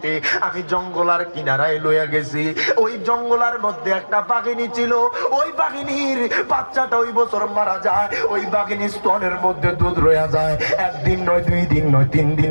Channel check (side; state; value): both; inverted; correlation -1.00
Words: আমি জঙ্গলার কিনারায় লইয়া গেছি। ওই জঙ্গলার মধ্যে একটা বাঘিনী ছিল, ওই বাঘিনীর বাচ্চাটা ওই বছর মারা যায়। ওই বাঘিনীর স্তনের মধ্যে দুধ রয়ে যায়, একদিন নয়, 2 দিন নয়, 3 দিন